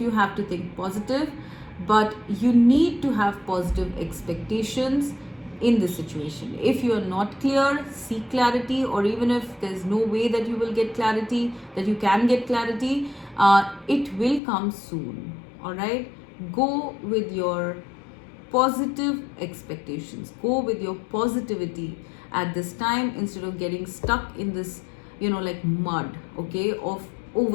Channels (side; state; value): right; drops out; at 14.4 s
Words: have to think positive, but you need to have positive expectations in this situation. If you are not clear, seek clarity, or even if there's no way that you will get clarity, that you can get clarity, it will come soon, all right? Go with your positive expectations, go with your positivity at this time, instead of getting stuck in this like mud, okay, of